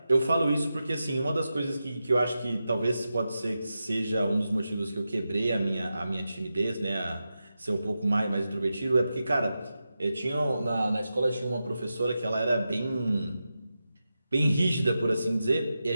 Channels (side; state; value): both; inverted; correlation -0.91